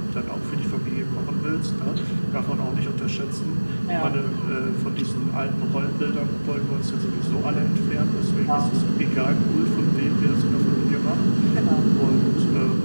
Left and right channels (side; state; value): both; inverted; correlation -1.00